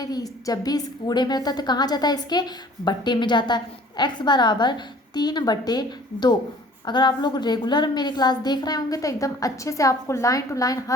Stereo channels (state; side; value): normal; both; correlation 0.52